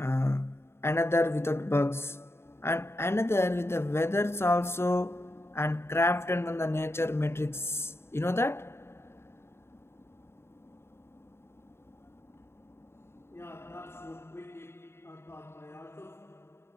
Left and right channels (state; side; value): late; right; 0.12 ms